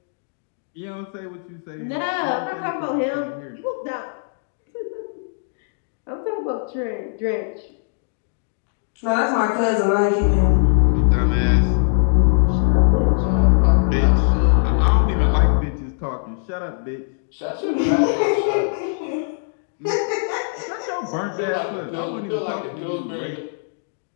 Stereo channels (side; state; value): right; silent; digital silence